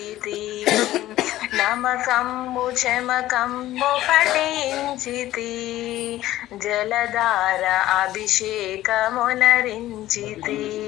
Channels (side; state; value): right; quieter; 14.8 dB